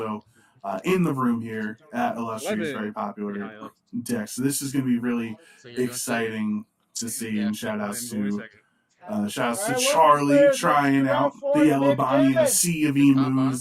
in the room here at Illustrious, 11. very popular Yeah, I love deck. So this is going to be really So you're doing exciting to see, Yeah, and shout-outs to Alright, Charlie trying out the Yellow Bonnie in a sea of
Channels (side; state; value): both; identical; correlation 1.00